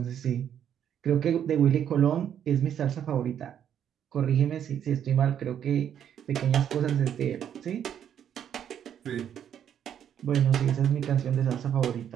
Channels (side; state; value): left; quieter; 9.3 dB